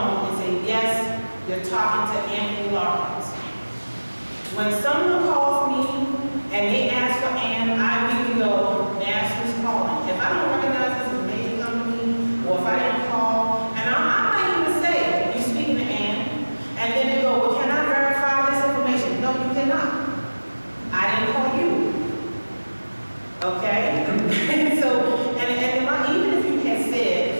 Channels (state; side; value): inverted; both; correlation -1.00